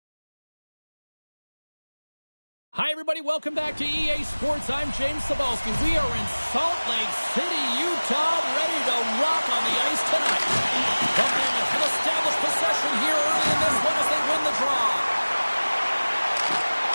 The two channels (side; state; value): both; inverted; correlation -1.00